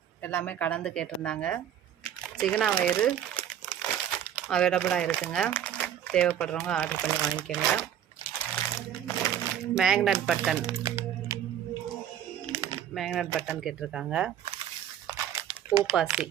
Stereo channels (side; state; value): left; quieter; 10.0 dB